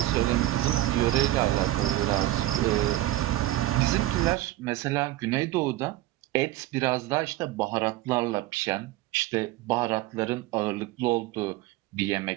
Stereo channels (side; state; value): left; quieter; 15.8 dB